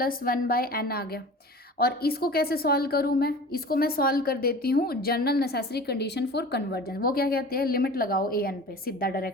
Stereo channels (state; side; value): normal; both; correlation 0.39